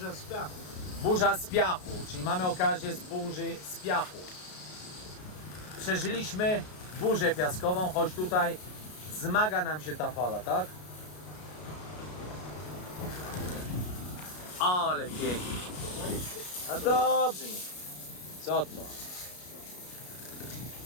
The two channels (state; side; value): late; right; 33 ms